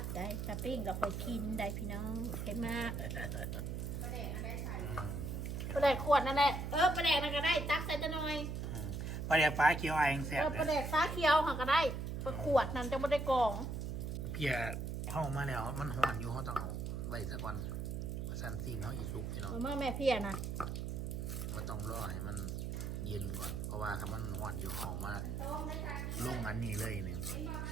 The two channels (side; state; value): right; noise; hum, 3 dB below the sound